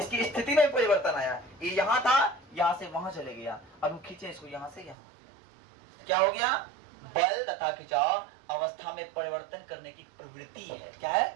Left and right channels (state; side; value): drops out; left; at 5.0 s